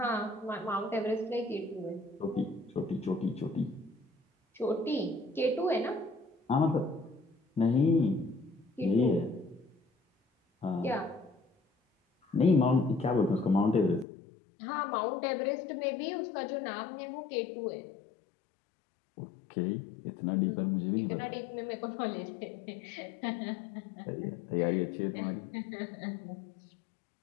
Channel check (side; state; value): right; drops out; at 14.1 s